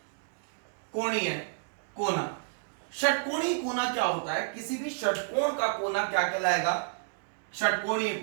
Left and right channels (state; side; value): silent; left; digital silence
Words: कोना। षटकोणीय कोना क्या होता है? किसी भी षटकोण का कोना क्या कहलाएगा? षटकोणीय